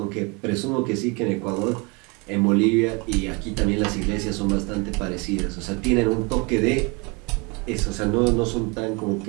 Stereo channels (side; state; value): left; quieter; 29.6 dB